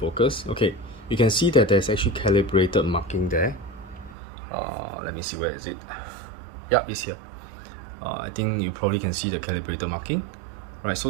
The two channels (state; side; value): drops out; left; at 4.2 s